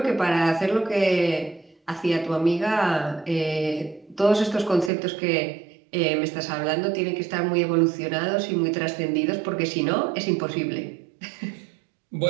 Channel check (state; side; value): drops out; left; at 4.9 s